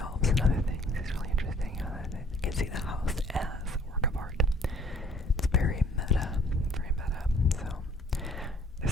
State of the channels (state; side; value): normal; both; correlation 0.58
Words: and other things. It's really interesting. You can see the house as a work of art. It's very meta, very meta. So,